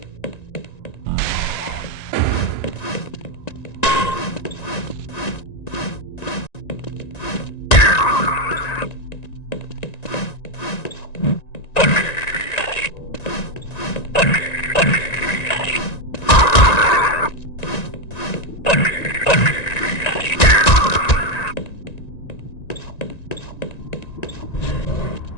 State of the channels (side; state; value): right; late; 1.9 ms